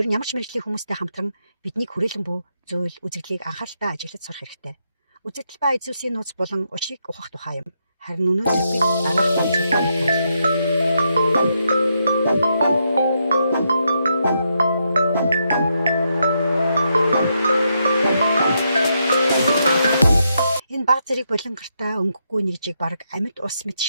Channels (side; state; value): both; inverted; correlation -0.80